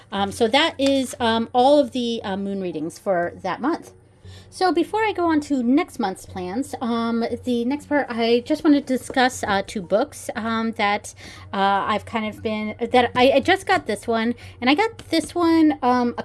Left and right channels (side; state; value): both; identical; correlation 1.00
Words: So that is all of the moon readings for that month. So before I go on to next month's plans, the next part, I just wanted to discuss two books that I've kind of been, that I just got this one, and I got this one a